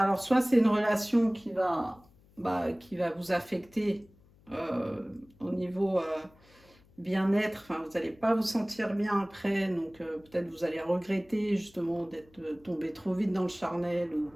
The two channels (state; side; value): noise; left; hum, 28 dB below the sound